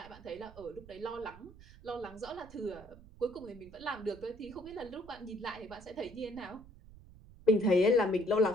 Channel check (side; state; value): right; noise; rumble, 19 dB below the sound